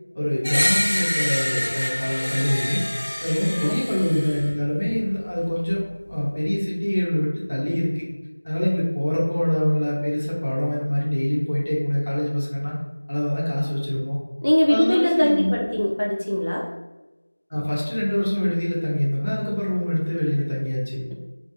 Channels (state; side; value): inverted; both; correlation -1.00